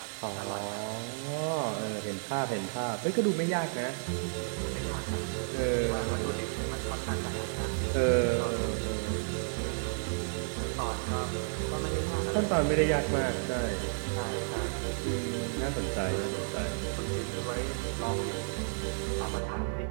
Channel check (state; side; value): silent; left; digital silence